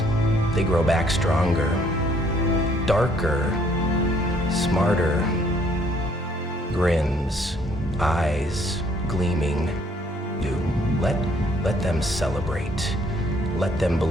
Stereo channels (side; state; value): both; normal; correlation 0.64